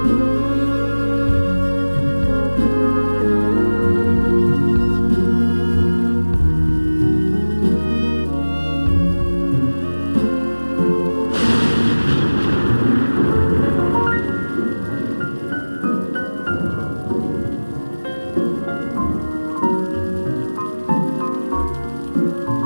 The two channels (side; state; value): both; inverted; correlation -1.00